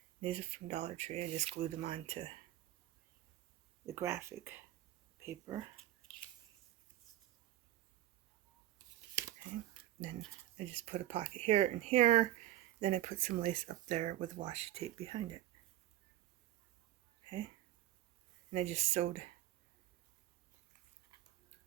These are from Dollar Tree. I just glued them onto the graphic paper. Okay, then I just put a pocket here and here. Then I put some lace up there with washi tape behind it. Okay, and I just sewed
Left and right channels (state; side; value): quieter; left; 13.5 dB